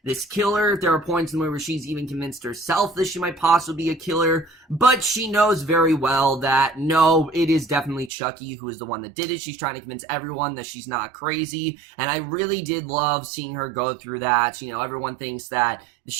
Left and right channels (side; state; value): left; drops out; at 8.1 s